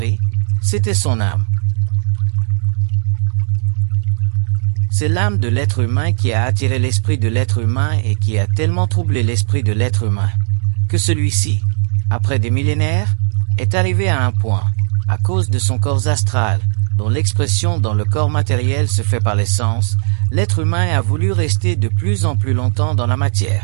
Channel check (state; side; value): silent; left; 63 dB below the other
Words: c'était son âme. C'est l'âme de l'être humain qui a attiré l'esprit de l'être humain et qui a tellement troublé l'esprit de l'être humain, que celui-ci, après des millénaires, est arrivé à un point, à cause de son corps astral, dont l'expression dans le corps matériel se fait par les sens, l'être humain a voulu rester de plus en plus longtemps dans la